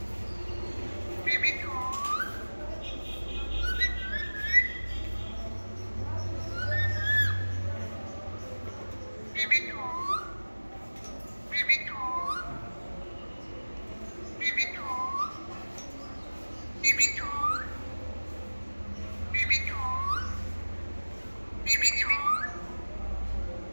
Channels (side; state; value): both; inverted; correlation -1.00